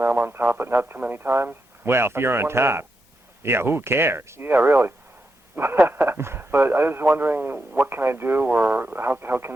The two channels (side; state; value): both; normal; correlation 0.85